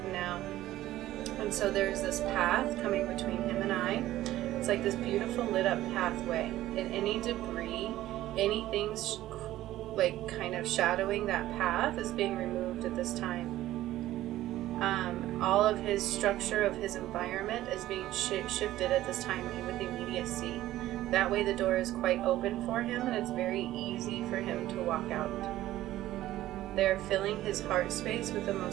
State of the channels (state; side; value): quieter; left; 14.7 dB